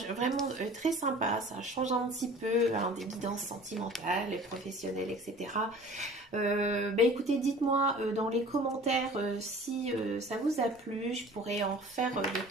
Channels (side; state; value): both; normal; correlation 0.45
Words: vraiment très sympa. Ça change un petit peu hein, des guidances sentimentales, et professionnelles, etc. Ben écoutez, dites-moi dans les commentaires si ça vous a plu. Je pourrais en faire de